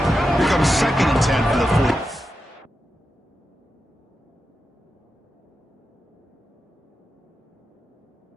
Here comes 2nd and 10 for the 40.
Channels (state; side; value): normal; both; correlation 0.89